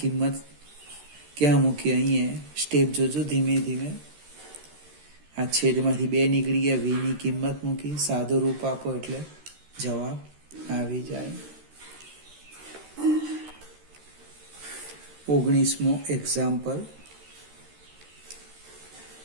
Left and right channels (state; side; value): late; left; 13 ms